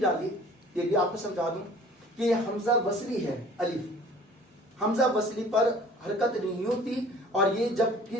ڈالی؟ یہ بھی آپ کو سمجھا دوں کہ یہ حمزہ وصلی ہے، الف حمزہ وصلی پر حرکت نہیں ہوتی، اور یہ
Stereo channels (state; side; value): normal; both; correlation 0.49